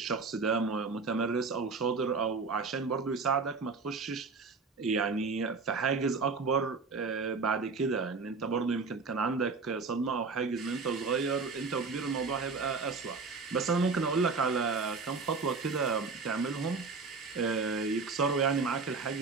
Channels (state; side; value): quieter; left; 4.5 dB